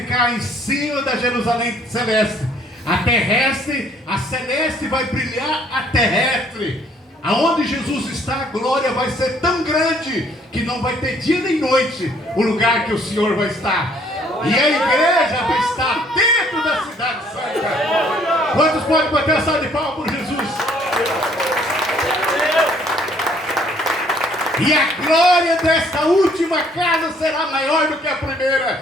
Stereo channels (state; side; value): normal; both; correlation 0.62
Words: em cima da Jerusalém celeste. A terrestre, a celeste vai brilhar a terrestre. Aonde Jesus está, a glória vai ser tão grande que não vai ter dia nem noite o lugar que o Senhor vai estar. E a igreja vai estar dentro da cidade santa. Quantos podem bater a salva de palmas por Jesus? E a glória desta última casa será maior do que a